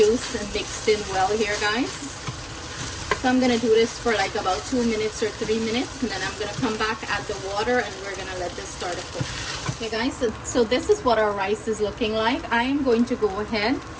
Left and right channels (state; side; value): identical; both; correlation 1.00